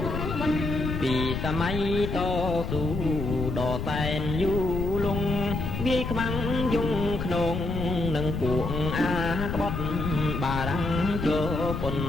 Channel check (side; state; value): left; noise; rumble, 3 dB below the sound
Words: សម័យតស៊ូដ៏សែនយូរលង់វាយខ្មាំងយងក្នុងនឹងពួកអាក្បត់បារាំងចូលពុន